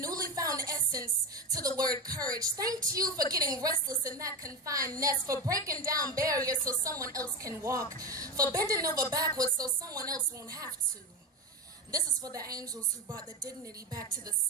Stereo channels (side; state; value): both; normal; correlation 0.19